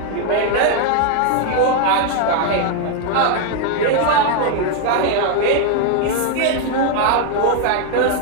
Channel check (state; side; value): different; both; correlation 0.01